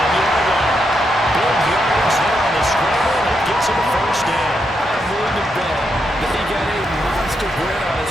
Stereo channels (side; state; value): both; normal; correlation 0.81